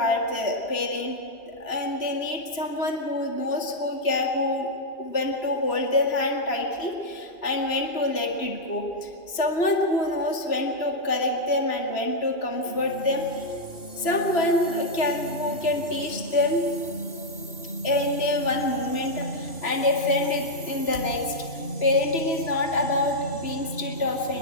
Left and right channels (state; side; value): late; right; 3.0 ms